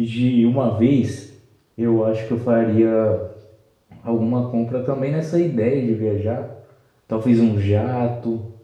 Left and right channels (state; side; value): identical; both; correlation 1.00